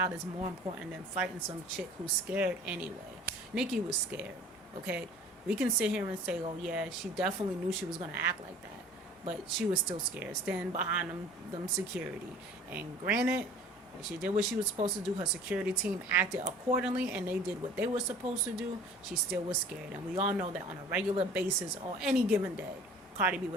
is more important than fighting some chick who's scared anyway. Nicki was scared, okay? We can sit here and say, oh yeah, she definitely knew she was going to act like that, but she was still scared, standing behind them security. And granted, she did what she was supposed to do. Her security team acted accordingly, and they did what they were supposed to do. She still was scared, and we all know that on a regular basis or any given day, Cardi B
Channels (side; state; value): both; normal; correlation 0.47